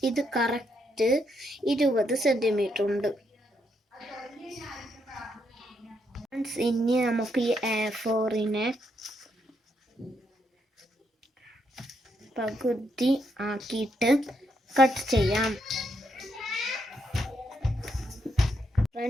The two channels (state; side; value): normal; both; correlation 0.77